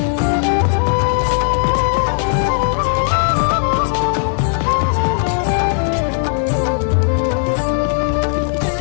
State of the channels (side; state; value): right; silent; 66 dB below the other